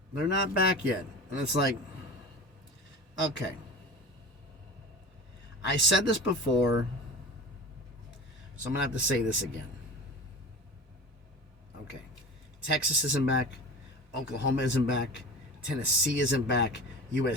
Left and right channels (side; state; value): both; normal; correlation 0.34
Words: They're not back yet. And it's like, okay. I said this before, so I'm going to have to say this again. Okay. Texas isn't back. Oklahoma isn't back. Tennessee isn't back.